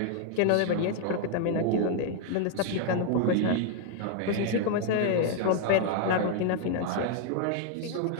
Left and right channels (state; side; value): different; both; correlation 0.00